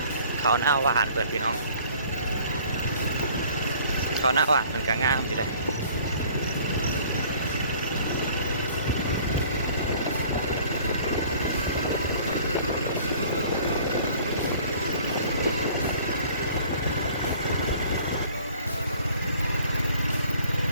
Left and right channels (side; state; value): both; inverted; correlation -0.53